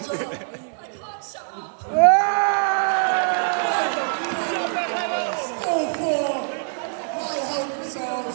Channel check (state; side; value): silent; left; digital silence